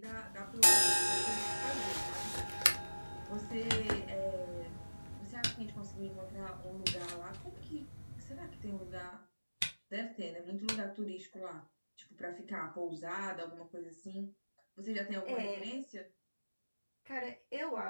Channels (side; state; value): both; inverted; correlation -1.00